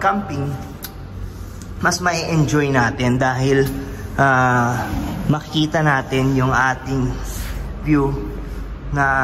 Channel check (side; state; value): both; identical; correlation 1.00